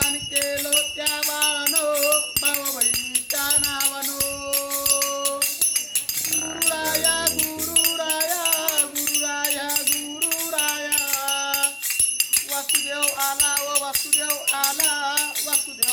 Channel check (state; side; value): identical; both; correlation 1.00